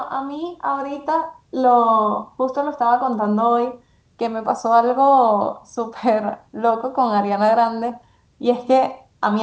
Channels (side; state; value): both; identical; correlation 1.00